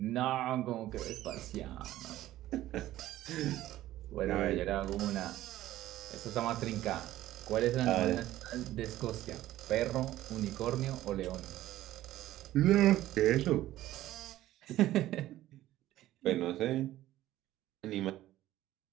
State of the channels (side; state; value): left; quieter; 14.6 dB